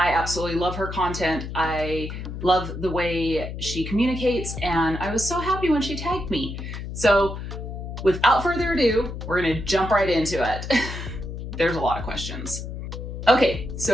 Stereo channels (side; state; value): left; noise; hum, 7 dB below the sound